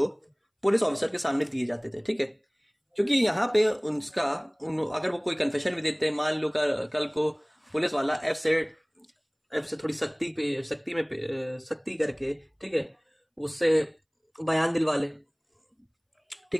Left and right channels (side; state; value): both; identical; correlation 1.00